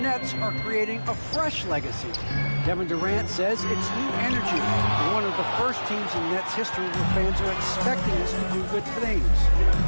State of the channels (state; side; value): inverted; both; correlation -1.00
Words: Nets are creating a fresh legacy. Kevin Durant says it's new energy. We're one of the first teams in Nets history where fans are expecting us to do good things.